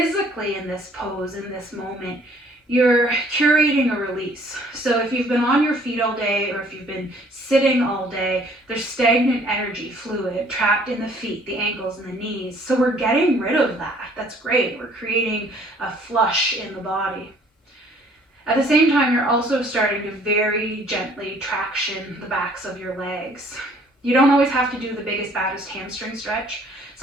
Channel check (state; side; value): normal; both; correlation 0.58